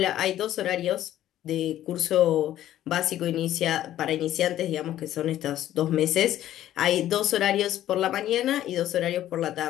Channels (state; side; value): quieter; right; 12.7 dB